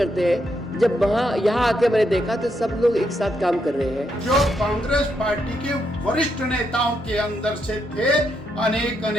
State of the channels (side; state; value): both; normal; correlation 0.79